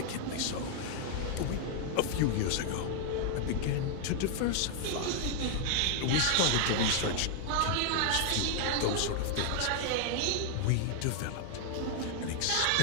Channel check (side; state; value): both; different; correlation 0.00